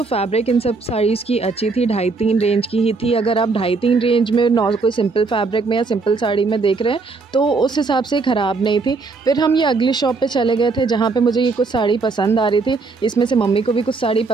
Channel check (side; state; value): left; quieter; 4.1 dB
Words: फैब्रिक इन सब साड़ीज़ की अच्छी थी, 2.5-3 रेंज की ही थी। अगर आप 2.5-3 रेंज में कोई सिंपल फैब्रिक में या सिंपल साड़ी में देख रहे हैं तो उस हिसाब से ख़राब नहीं थी। फिर हम ये अगली शॉप पर चले गए थे जहाँ पर मुझे ये कुछ साड़ी पसंद आ रही थी। इसमें से मम्मी को भी कुछ साड़ी